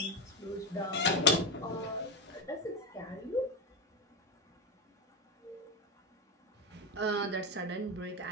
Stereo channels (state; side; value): normal; both; correlation 0.13